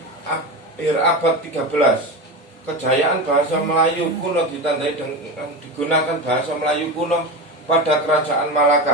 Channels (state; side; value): normal; both; correlation 0.23